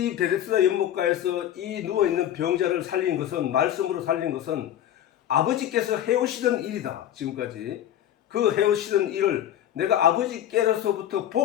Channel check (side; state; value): right; quieter; 11.3 dB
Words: 베데스다 연못가에서 이 누워있는 병자를 살린 것은, 말씀으로 살린 것은 아버지께서 해오시던 일이다. 지금까지 그 해오시던 일을 내가 아버지께로서부터